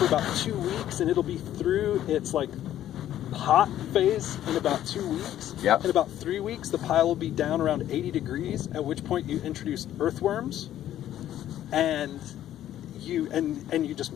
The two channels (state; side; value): quieter; right; 12.1 dB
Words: about 2 weeks, and it'll be through its like hot phase in about 2 weeks. Yep. In about 3 weeks, the pile will be down around 80 degrees, at which point you introduce earthworms, and you just